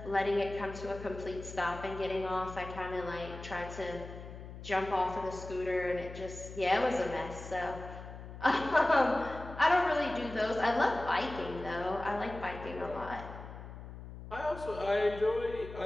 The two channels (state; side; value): noise; left; hum, 12 dB below the sound